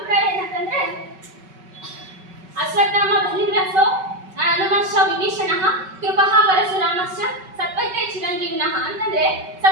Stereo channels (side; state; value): left; late; 5.3 ms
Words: ಏನಂತಂದ್ರೆ, ಅಶ್ವತ್ಥಾಮ ಬಲಿವ್ರಸೋ ಹನುಮಶ್ಚ ವಿಭೀಷಣಃ ಕೃಪಃ ಪರಶುರಾಮಶ್ಚ ಸತ್ಪೈತೆ ಚಿರಂಜೀವಿನಃ. ಅಂತಂದ್ರೆ